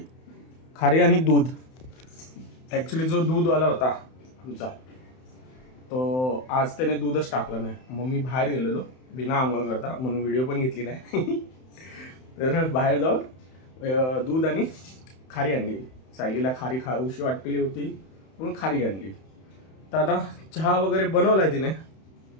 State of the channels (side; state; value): right; late; 31 ms